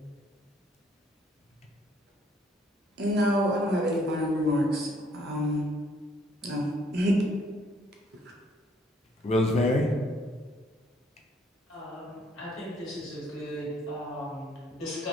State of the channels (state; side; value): normal; both; correlation 0.65